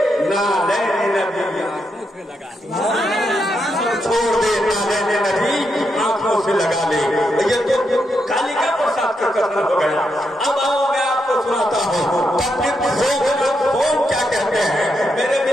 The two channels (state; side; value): normal; both; correlation 0.82